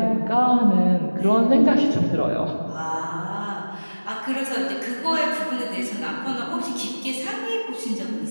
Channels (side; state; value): both; inverted; correlation -1.00